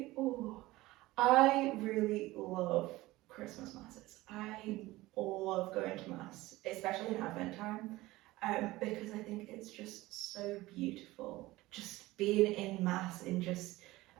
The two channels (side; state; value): left; quieter; 18.7 dB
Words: I really love Christmas masses. I love going to mass, especially in Advent time, because I think it's just so beautiful. Just being in mass, in just